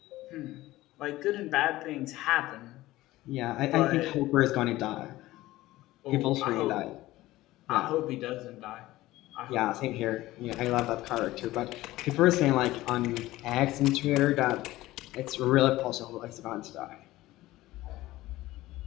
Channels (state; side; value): quieter; right; 17.2 dB